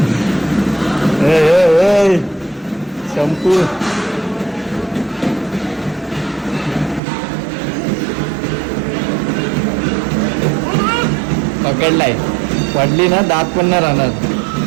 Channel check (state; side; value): drops out; left; at 7.0 s